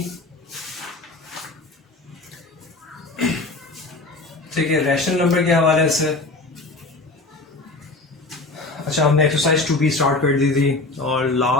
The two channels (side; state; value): right; quieter; 3.1 dB